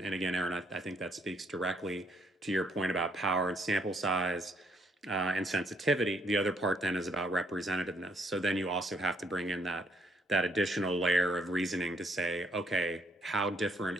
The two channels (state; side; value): normal; both; correlation 0.69